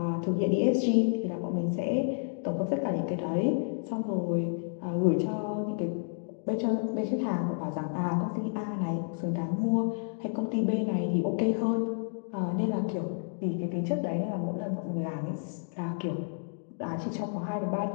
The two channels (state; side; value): silent; right; digital silence